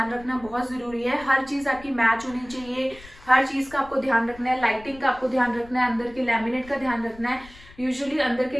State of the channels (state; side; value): noise; left; rumble, 21 dB below the sound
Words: रखना बहुत जरूरी है। हर चीज आपकी मैच होनी चाहिए, हर चीज का आपको ध्यान रखना है, लाइटिंग का आपको ध्यान रखना है, अंदर के लैमिनेट का ध्यान रखना है। यूजुअली अंदर के